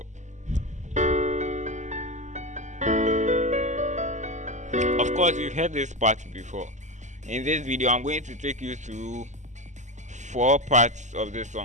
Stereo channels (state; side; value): late; left; 0.34 ms